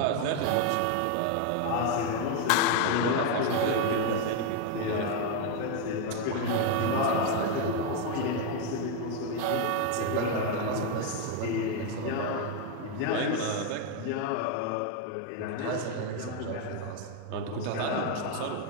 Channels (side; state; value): both; different; correlation 0.01